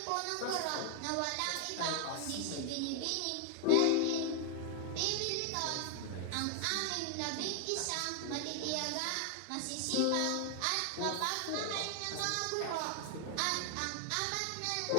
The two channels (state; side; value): different; both; correlation 0.00